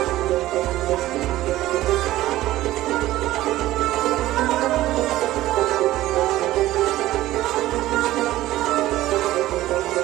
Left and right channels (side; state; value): left; quieter; 15.5 dB